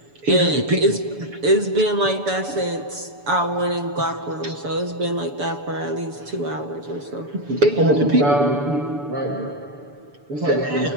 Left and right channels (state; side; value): late; left; 6.9 ms